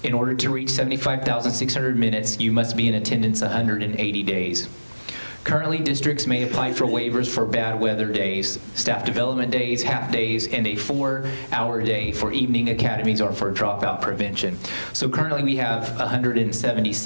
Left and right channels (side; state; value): both; inverted; correlation -1.00